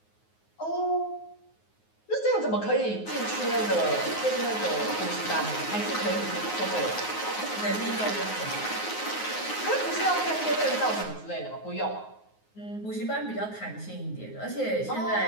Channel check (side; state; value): right; late; 9.5 ms